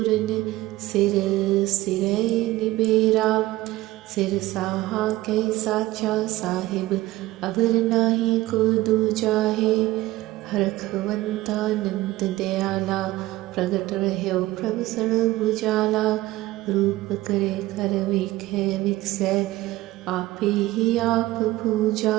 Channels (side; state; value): left; quieter; 17.5 dB